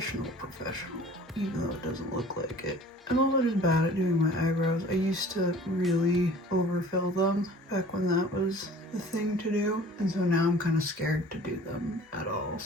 even though it doesn't look like it. I'm also just bad at doing my eyebrows. I used to really overfill them back when that was the thing to do, and so now I'm kind of scared to do them at all,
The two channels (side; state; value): both; normal; correlation 0.47